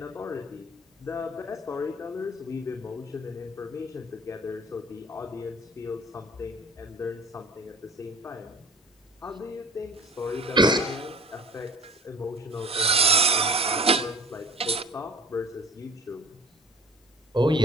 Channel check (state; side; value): normal; both; correlation 0.45